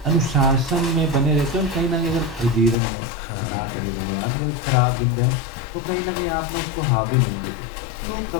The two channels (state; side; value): drops out; right; at 2.8 s